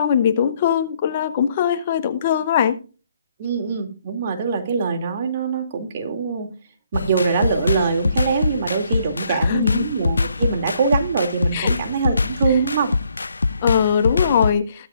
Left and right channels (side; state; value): both; inverted; correlation -0.68